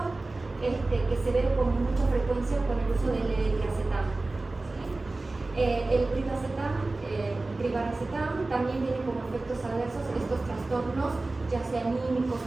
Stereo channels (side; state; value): left; quieter; 3.2 dB